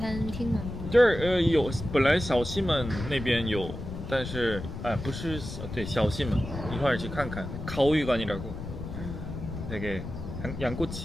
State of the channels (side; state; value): left; noise; rumble, 8 dB below the sound